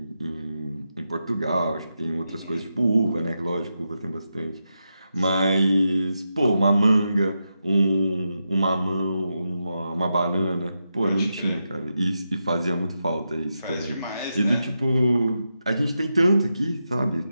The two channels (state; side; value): inverted; both; correlation -0.87